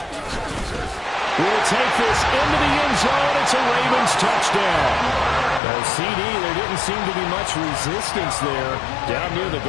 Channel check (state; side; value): drops out; right; at 5.6 s